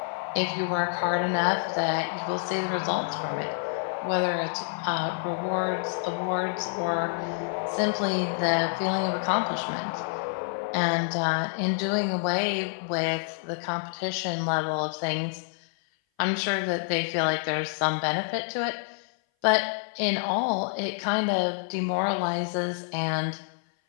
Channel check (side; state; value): right; silent; 57 dB below the other